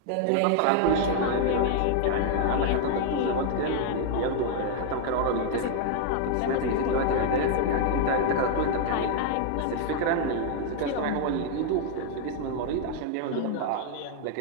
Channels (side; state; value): both; different; correlation 0.00